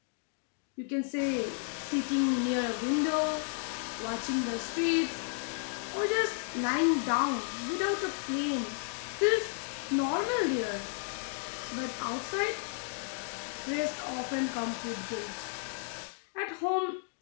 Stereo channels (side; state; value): right; silent; 56 dB below the other